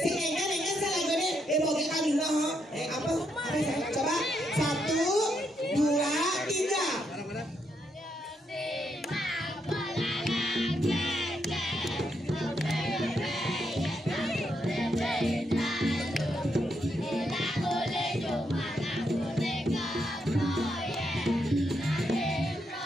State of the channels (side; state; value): both; normal; correlation 0.79